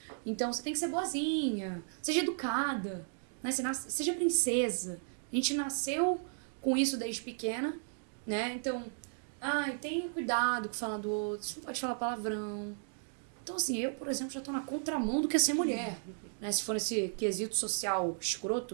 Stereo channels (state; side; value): silent; left; digital silence